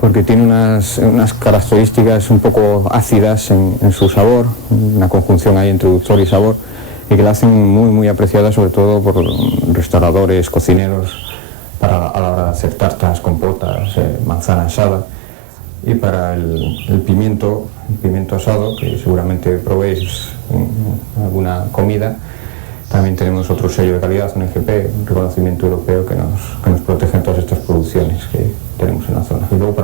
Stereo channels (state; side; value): drops out; left; at 10.8 s